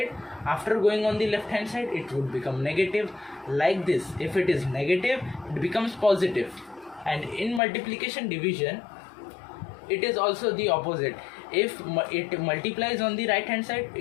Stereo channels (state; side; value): drops out; right; at 7.6 s